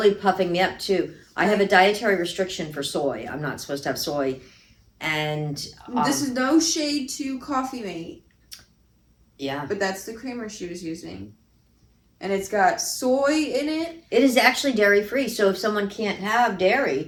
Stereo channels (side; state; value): both; identical; correlation 1.00